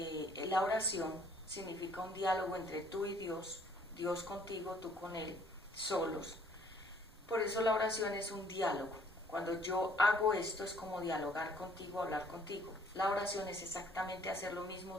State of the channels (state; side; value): normal; both; correlation 0.60